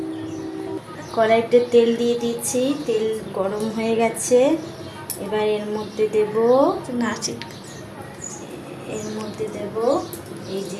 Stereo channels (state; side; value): identical; both; correlation 1.00